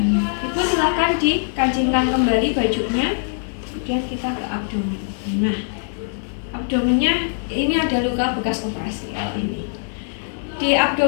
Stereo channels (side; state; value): right; silent; 63 dB below the other